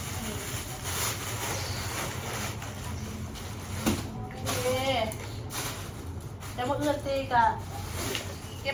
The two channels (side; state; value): both; identical; correlation 1.00